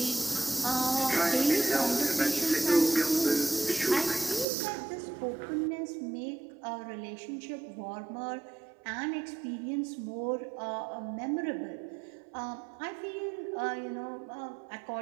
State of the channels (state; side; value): drops out; left; at 4.5 s